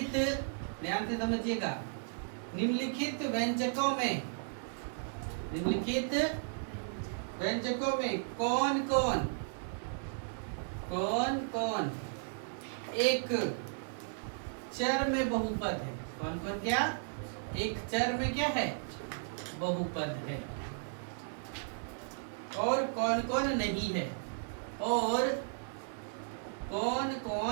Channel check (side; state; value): left; silent; digital silence